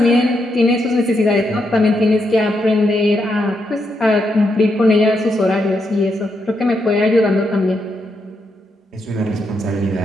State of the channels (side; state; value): both; normal; correlation 0.81